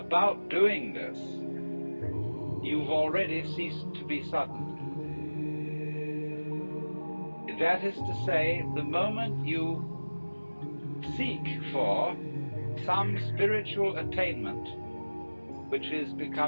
doing this, you've already ceased to be sudden. That is to say, the moment you seek for some spiritual attainment, which is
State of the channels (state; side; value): inverted; both; correlation -1.00